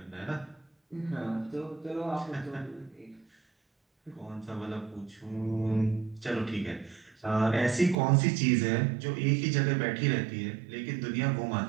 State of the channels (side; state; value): left; drops out; at 8.0 s